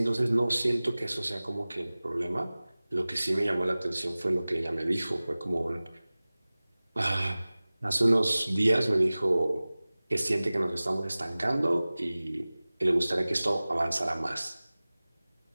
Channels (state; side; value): inverted; both; correlation -0.98